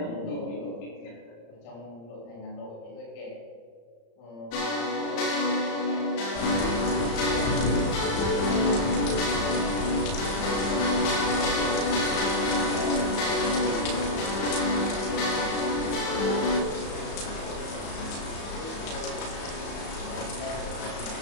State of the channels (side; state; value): right; late; 35 ms